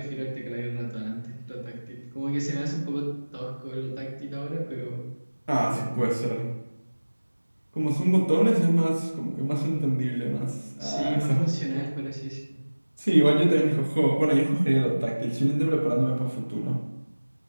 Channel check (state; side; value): inverted; both; correlation -1.00